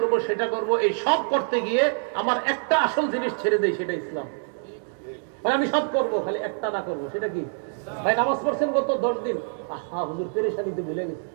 সেটা করব, এই সব করতে গিয়ে আমার একটা আসল জিনিস ছেড়ে দেই, সেটা ইসলাম। মানে আমি সব করব, খালি একটা না করব, সেটা কি? ভাই নামাজ পড়ছেন গত 10 দিন, আহা হুজুর পেরেশানিতে ভুলে গেছে,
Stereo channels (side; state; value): left; silent; digital silence